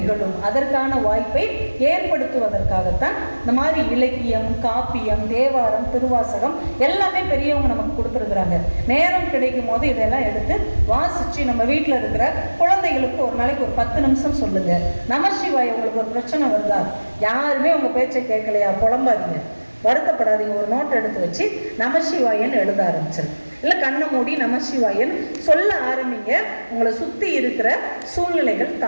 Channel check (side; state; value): both; inverted; correlation -1.00